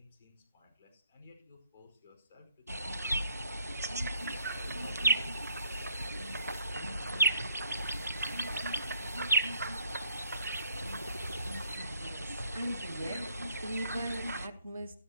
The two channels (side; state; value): both; inverted; correlation -0.66